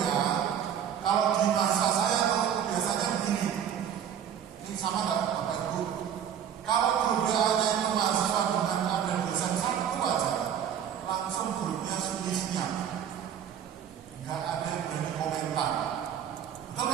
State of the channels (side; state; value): left; quieter; 9.0 dB